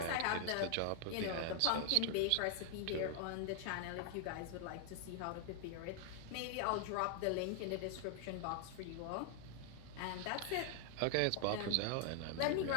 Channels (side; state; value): both; different; correlation 0.00